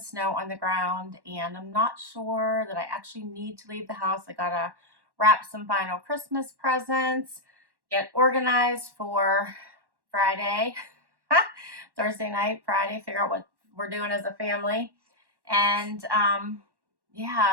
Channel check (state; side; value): late; left; 1.1 ms